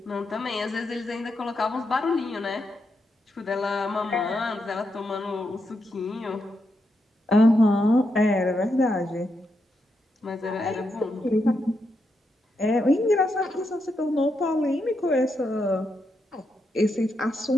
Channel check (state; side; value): normal; both; correlation 0.83